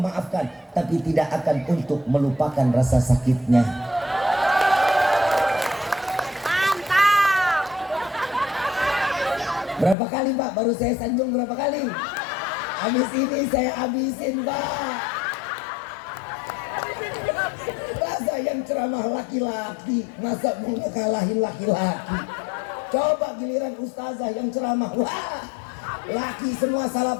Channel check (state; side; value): drops out; right; at 10.0 s